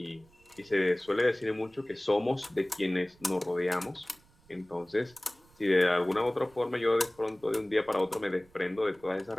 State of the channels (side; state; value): right; noise; rumble, 30 dB below the sound